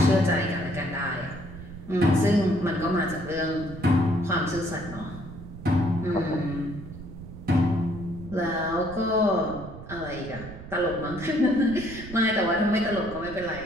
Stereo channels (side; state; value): right; noise; rumble, 13 dB below the sound